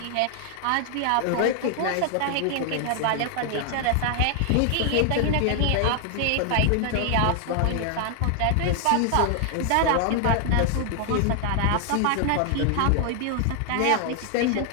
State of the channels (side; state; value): both; different; correlation 0.00